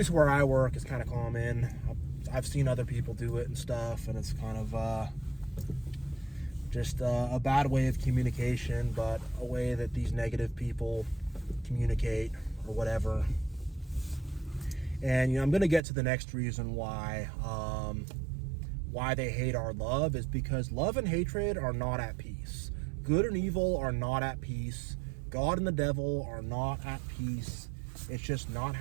where I work, is kind of common. I've seen other people do it and stuff, and it's kind of just a bad way of communication, but a way that these negative people communicate or whatever. And I'm going to get to the next reason why they hate our love, is because love and hatred are not at peace. Good and evil are not at peace. God and the devil are not at peace. It's just not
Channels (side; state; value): left; drops out; at 15.8 s